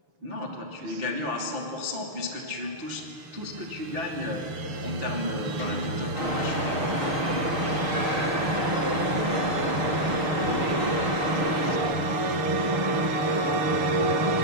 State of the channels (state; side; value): late; left; 6.8 ms